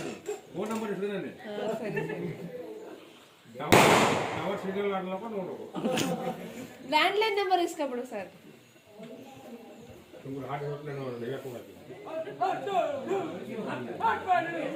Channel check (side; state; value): both; identical; correlation 1.00